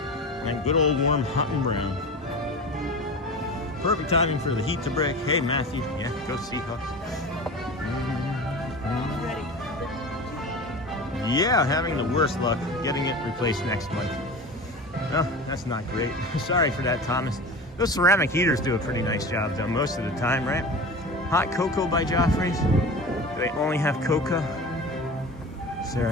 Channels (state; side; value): normal; both; correlation 0.33